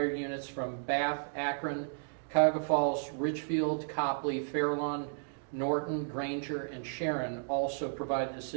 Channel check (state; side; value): silent; left; digital silence